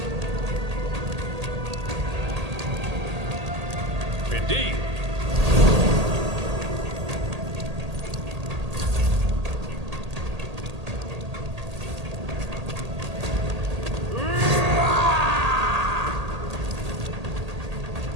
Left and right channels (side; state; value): left; late; 1.8 ms